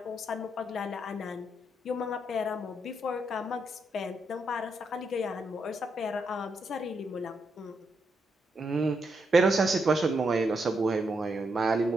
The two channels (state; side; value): normal; both; correlation 0.80